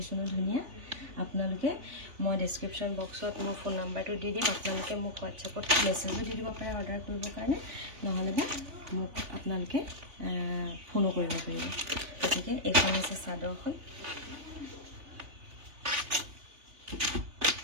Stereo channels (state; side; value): late; left; 3.5 ms